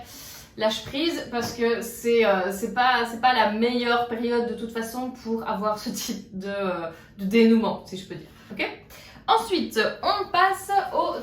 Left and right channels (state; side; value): identical; both; correlation 1.00